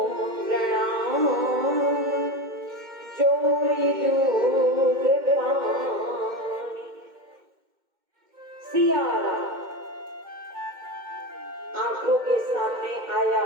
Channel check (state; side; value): late; left; 2.1 ms